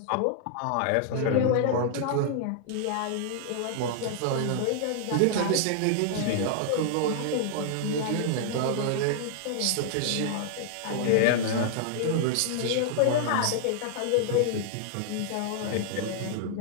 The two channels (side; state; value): both; different; correlation -0.01